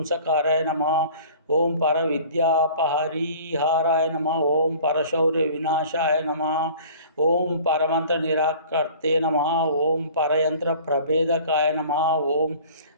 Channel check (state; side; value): inverted; both; correlation -0.46